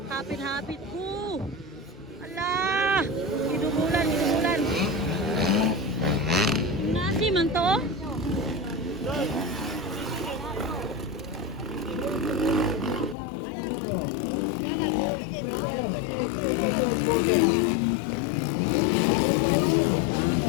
hapit-hapit ko. Ala! Idubulan, idubulan. Nasi man to?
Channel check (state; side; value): drops out; right; at 13.2 s